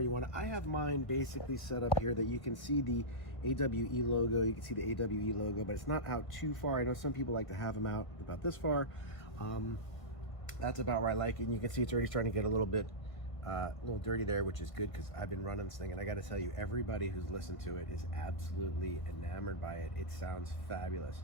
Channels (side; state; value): right; late; 1.5 ms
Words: want it. I have mine basically set up here that you can see the AWE logo, you can see the AWE logo, but it's not out too far. I know some people like to have them out about this far. That's about where I like it, and you can see it's already starting to get a little bit dirty there, which is good because I've been running this thing, and I got to tell you, everybody who's listened to it is absolutely enamored by it. It sounds fabulous.